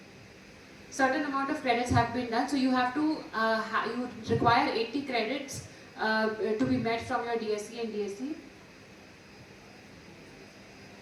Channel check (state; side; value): identical; both; correlation 1.00